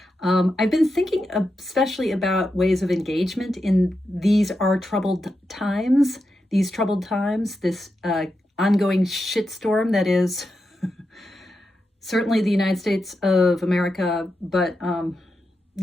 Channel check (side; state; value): both; normal; correlation 0.87